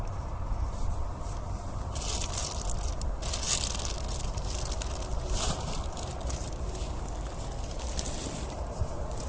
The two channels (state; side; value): identical; both; correlation 1.00